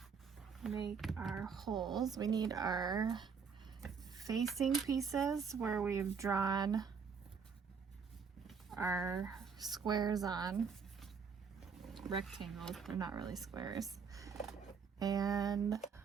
make our holes. We need our facing pieces where we've drawn our squares on, rectangles, they're not really squares. And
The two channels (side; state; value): left; quieter; 6.0 dB